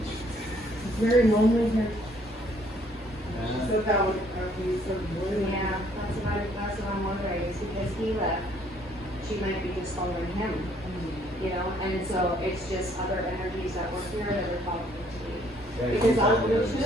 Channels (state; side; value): normal; both; correlation 0.64